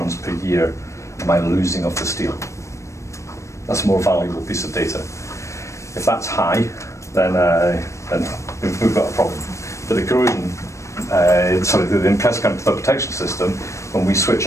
per year am I losing of the steel? That's a more valuable piece of data. If that's high, then we've got a problem. But the corrosion, the Impressed Current Cathodic Protection system, when we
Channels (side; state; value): right; late; 0.15 ms